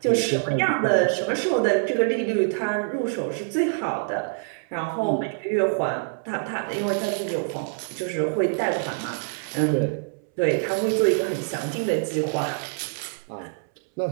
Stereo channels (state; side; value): silent; left; 62 dB below the other